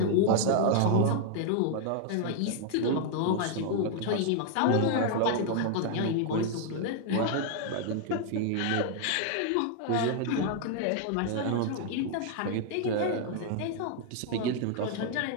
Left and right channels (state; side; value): different; both; correlation 0.00